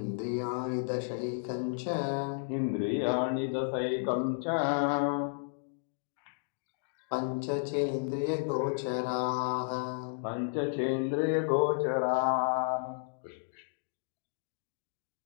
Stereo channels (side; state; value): right; silent; digital silence